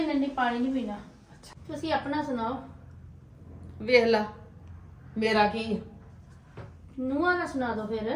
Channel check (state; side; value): identical; both; correlation 1.00